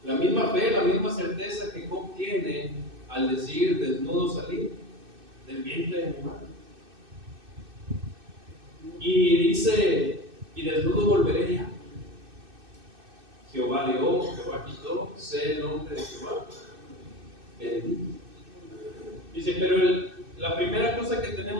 la misma fe, la misma certeza que Job tiene al decir: desnudo salí del vientre de mi madre. Y dice: y desnudo volveré ya. Jehová dio, Jehová quitó, sea el nombre de Jehová bendito. Dice: pero la primera cosa que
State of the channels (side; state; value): left; late; 2.6 ms